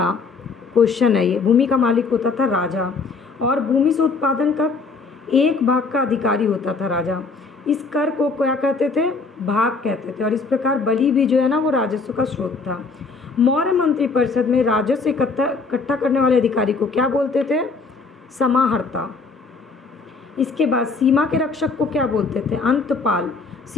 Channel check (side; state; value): right; quieter; 4.4 dB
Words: क्वेश्चन है ये। भूमि का मालिक होता था राजा और भूमि से उत्पादन का 1 भाग का अधिकारी होता था राजा। इस कर को क्या कहते थे? भाग कहते थे। और इस प्रकार बलि भी जो है ना वो राजस्व का स्रोत था। मौर्य मंत्री परिषद में राजस्व इकट्ठा करने वाले अधिकारी को क्या बोलते थे? समाहर्ता। इसके बाद सीमा के रक्षक को क्या बोलते थे? अंतपाल।